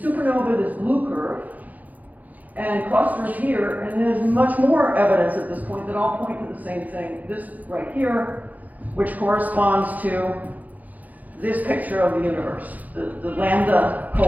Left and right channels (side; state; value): left; late; 0.079 ms